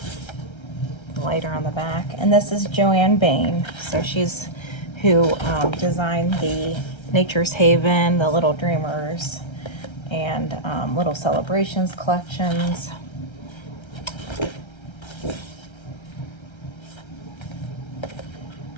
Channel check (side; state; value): right; late; 1.3 ms